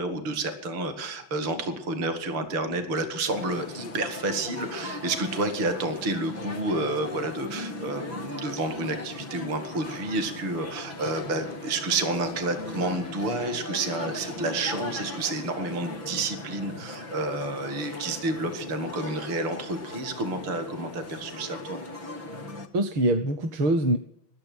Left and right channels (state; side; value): late; left; 6.1 ms